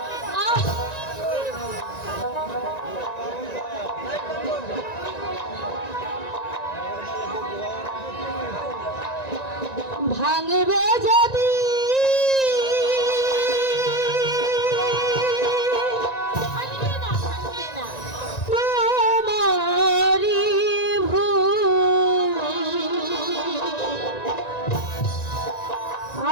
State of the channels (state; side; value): late; right; 1.9 ms